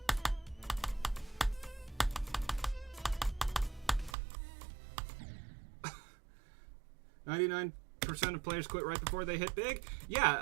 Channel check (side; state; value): left; drops out; at 4.2 s